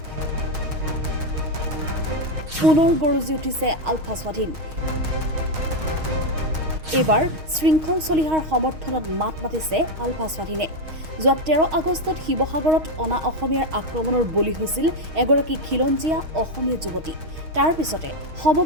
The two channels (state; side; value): late; left; 6.4 ms